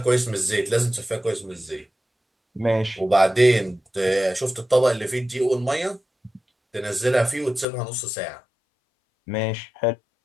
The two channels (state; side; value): drops out; right; at 7.7 s